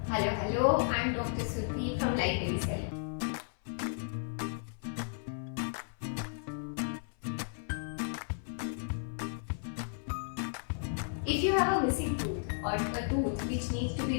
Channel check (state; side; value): silent; right; 55 dB below the other